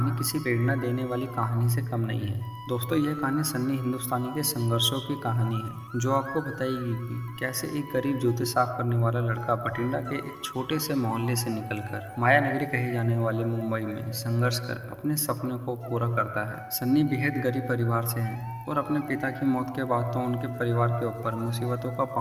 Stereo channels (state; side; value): identical; both; correlation 1.00